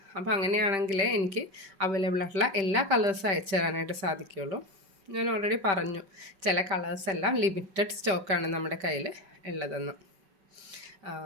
അപ്പോൾ അങ്ങനെയാണെങ്കിൽ എനിക്ക് അവൈലബിൾ ആയിട്ടുള്ള എല്ലാ കളേഴ്സും അയച്ചു തരാനായിട്ട് സാധിക്കുകയുള്ളൂ. ഞാൻ ഓൾറെഡി പറഞ്ഞു ചില കളേഴ്സ് എല്ലാം ലിമിറ്റഡ് സ്റ്റോക്കാണ് നമ്മുടെ കയ്യിൽ ഉള്ളതെന്ന്.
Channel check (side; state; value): left; late; 5.2 ms